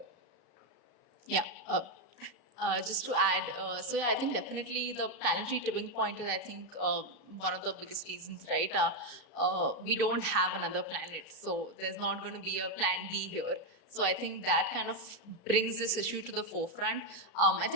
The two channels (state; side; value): late; right; 34 ms